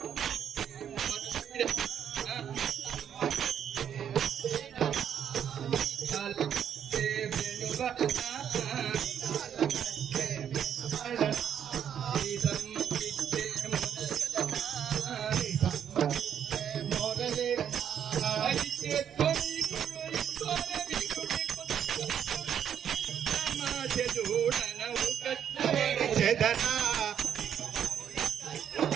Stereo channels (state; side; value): quieter; left; 8.9 dB